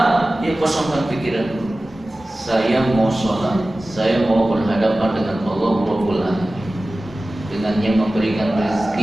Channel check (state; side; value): normal; both; correlation 0.96